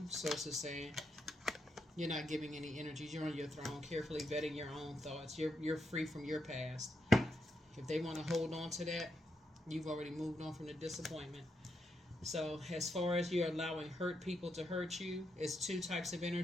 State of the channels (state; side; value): normal; both; correlation 0.82